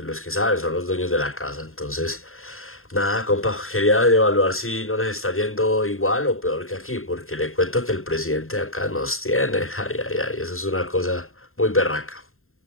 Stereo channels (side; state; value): right; late; 0.61 ms